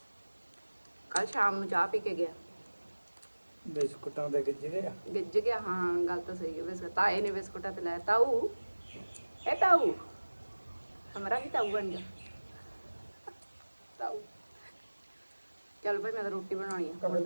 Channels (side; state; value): both; inverted; correlation -1.00